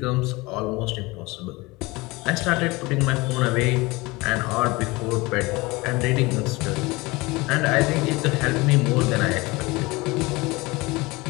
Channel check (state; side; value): quieter; right; 23.1 dB